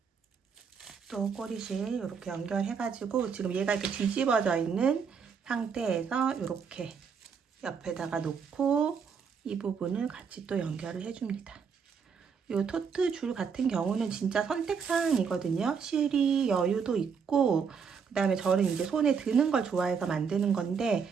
또 꼬리실 이렇게 연결해가지고 지금 얘가 이렇게 뒤집어져 있는 상태에서 이렇게 옆에다가 놓고 이 부분을 같이 또 연결을 해줍니다. 이 토트 줄 같은 경우는 진짜 선택사항이거든요. 실이 여유도 있고, 그 다음에 저는 이제 손에 드는 걸 좋아해서 만드는 건데,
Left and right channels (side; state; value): left; quieter; 6.2 dB